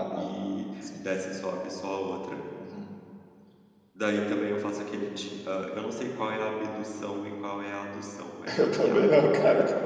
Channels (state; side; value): identical; both; correlation 1.00